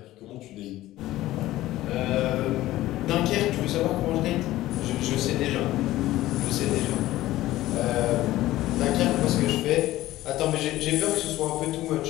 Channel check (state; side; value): quieter; right; 15.8 dB